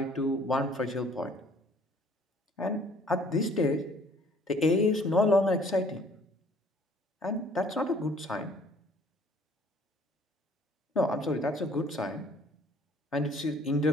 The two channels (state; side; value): normal; both; correlation 0.57